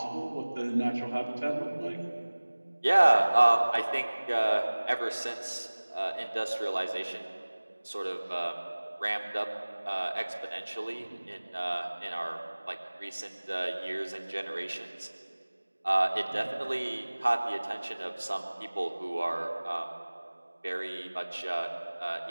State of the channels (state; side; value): inverted; both; correlation -1.00